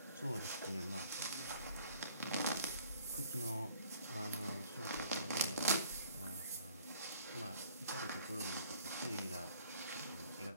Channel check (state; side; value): inverted; both; correlation -0.58